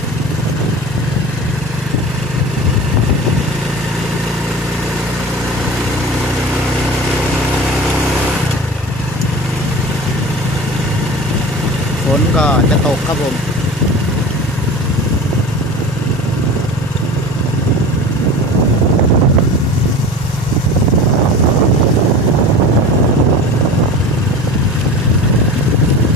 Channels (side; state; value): both; normal; correlation 0.35